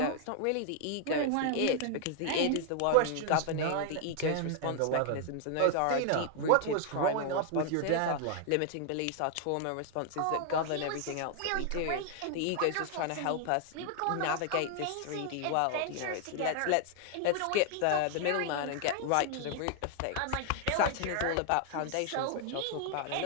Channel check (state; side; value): different; both; correlation 0.00